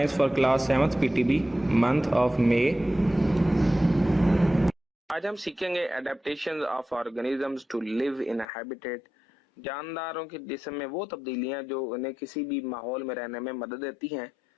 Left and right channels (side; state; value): right; drops out; at 8.5 s